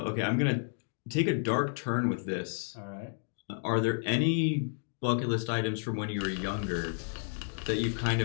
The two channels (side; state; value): right; silent; digital silence